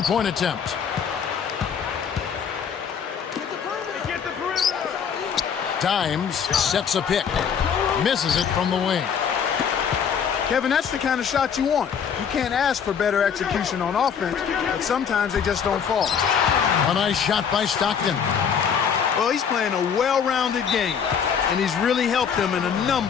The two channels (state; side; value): quieter; right; 7.3 dB